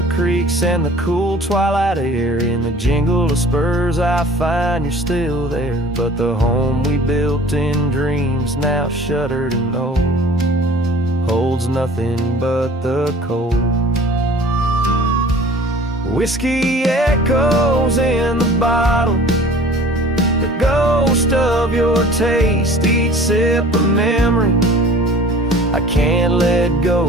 creeks and the cool twilight air. In the jingle of spurs I find you're still there, but the home we built in dreams, now shuttered and old, holds nothing but the cold. Whiskey echoes in the bottle, the ghost of your taste. Each sip a memory I can't let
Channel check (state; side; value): normal; both; correlation 0.46